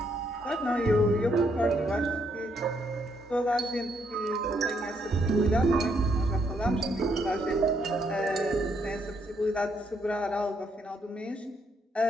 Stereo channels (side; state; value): both; normal; correlation 0.74